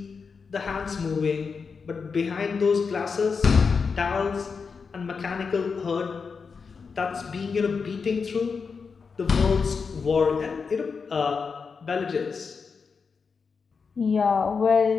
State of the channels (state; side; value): quieter; right; 5.3 dB